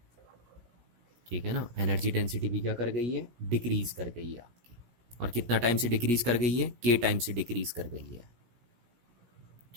ठीक है ना, एनर्जी डेंसिटी भी क्या कर गई है, डिक्रीज कर गई है आपकी। और कितना टाइम से डिक्रीज कर गई है, के टाइम से डिक्रीज कर गई है।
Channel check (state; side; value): late; left; 17 ms